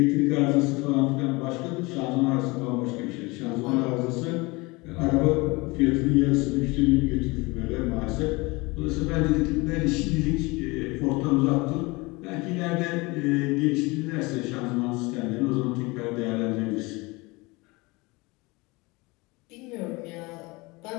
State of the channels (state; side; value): quieter; right; 24.5 dB